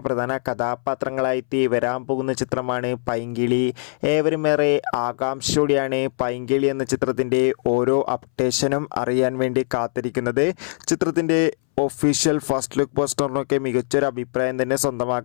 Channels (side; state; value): right; silent; 62 dB below the other